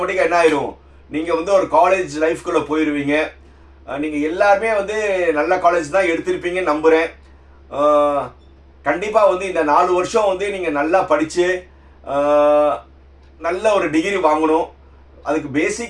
என்ன ஆயிடும், நீங்கள் வந்து ஒரு காலேஜ் லைஃப்குள்ளே போயிடுவீங்க. நீங்கள் எல்லாருமே வந்து நல்ல காலேஜ் தான் எடுத்திருப்பீங்கன்னு நம்புகிறேன். கண்டிப்பாக வந்து இந்த 4 வருஷம் வந்து நீங்கள் நல்லா படித்து நல்ல ஒரு டிகிரி வாங்கணும். அதுக்கு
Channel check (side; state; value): both; identical; correlation 1.00